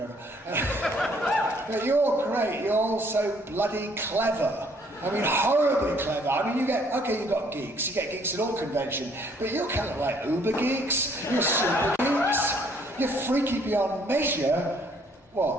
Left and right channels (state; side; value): normal; both; correlation 0.63